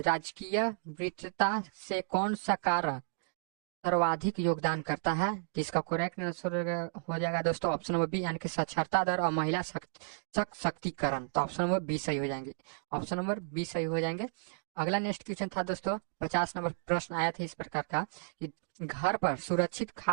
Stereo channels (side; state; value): left; silent; digital silence